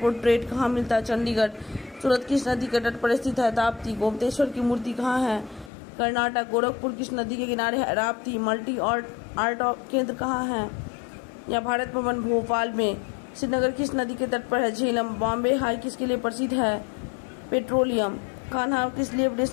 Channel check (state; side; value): drops out; right; at 5.7 s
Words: कहाँ मिलता है? चंडीगढ़। सूरत किस नदी के तट पर स्थित है? ताप्ती। गोमतेश्वर की मूर्ति कहाँ है? कर्नाटक। गोरखपुर किस नदी के किनारे है? राप्ती। मल्टी आर्ट केंद्र कहाँ है? या भारत भवन भोपाल में। श्रीनगर किस नदी के तट पर है? झेलम। बॉम्बे हाई किसके लिए प्रसिद्ध है? पेट्रोलियम। कान्हा किस लिए